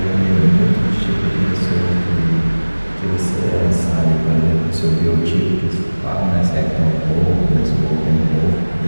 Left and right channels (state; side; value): inverted; both; correlation -1.00